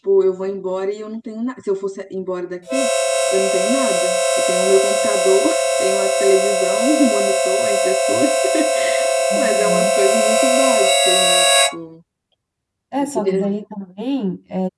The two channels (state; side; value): identical; both; correlation 1.00